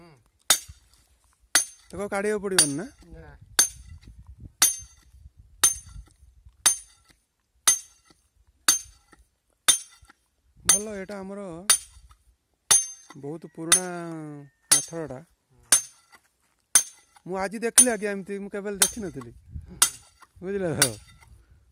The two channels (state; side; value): identical; both; correlation 1.00